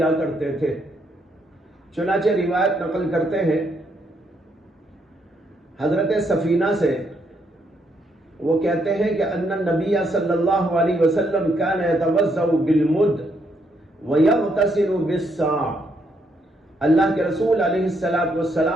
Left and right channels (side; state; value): both; normal; correlation 0.75